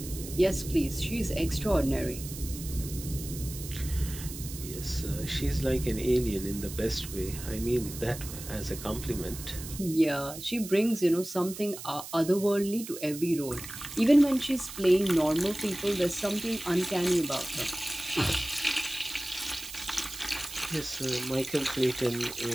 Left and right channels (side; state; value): right; noise; hiss, 11 dB below the sound